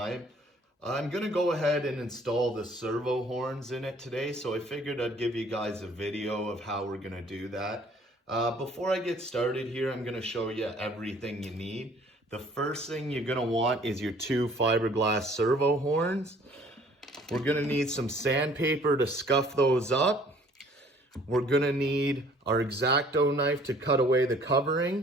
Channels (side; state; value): both; normal; correlation 0.56